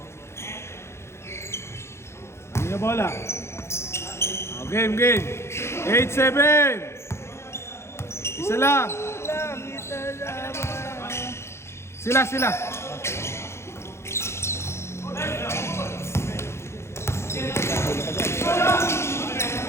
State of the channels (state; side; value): late; right; 0.13 ms